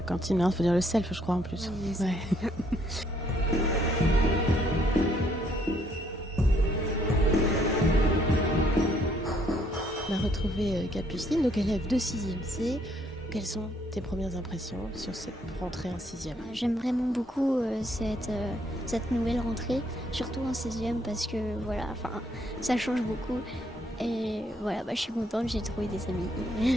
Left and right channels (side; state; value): both; normal; correlation 0.68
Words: cantine, il faut dire le self, je crois, en plus. Oui, c'est Ouais. On a retrouvé Capucine, donc élève de 6e C. Quelles sont tes premières impressions sur cette rentrée en 6e ? J'aime vraiment beaucoup cette nouvelle rentrée, surtout en 6e parce que ça change beaucoup. Et voilà, je suis contente, j'ai trouvé des